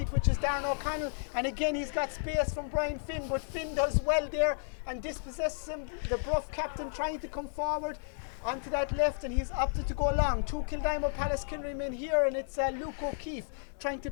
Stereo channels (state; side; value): silent; right; digital silence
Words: which is Darren O'Connell. And again, he's got space from Brian Finn, but Finn does well there and dispossesses him. The Bruff captain trying to come forward onto that left, and he's opted to go long. 2 Kildimo Pallaskenry men here, and it's Luke O'Keefe trying to